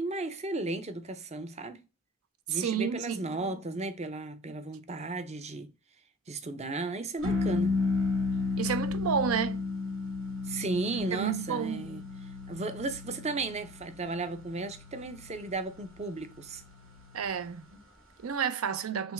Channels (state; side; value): normal; both; correlation 0.37